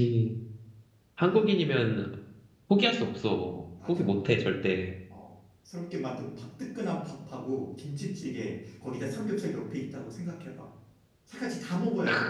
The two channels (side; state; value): both; identical; correlation 1.00